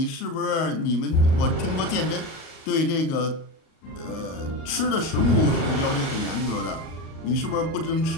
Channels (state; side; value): late; right; 37 ms